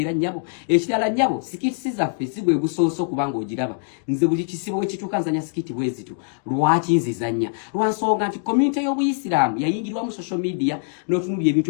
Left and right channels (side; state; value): right; silent; digital silence